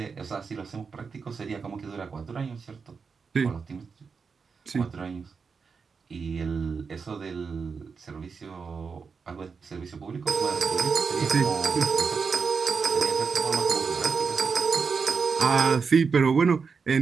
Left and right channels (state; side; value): quieter; left; 5.4 dB